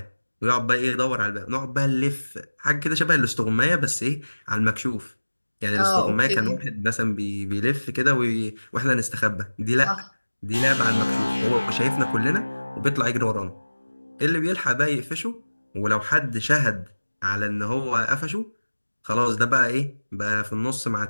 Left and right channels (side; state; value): both; inverted; correlation -1.00